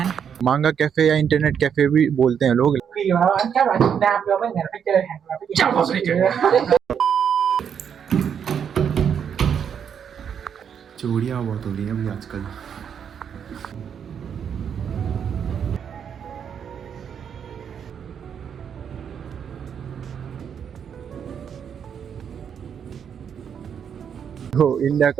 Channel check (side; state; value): left; quieter; 7.8 dB